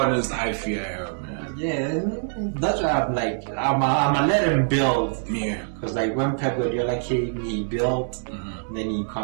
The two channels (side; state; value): left; silent; digital silence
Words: I fear, man. Yeah, that's why I'm like, I'm gonna let him build. Yeah. Because like when Pep Guardiola came, he built, then he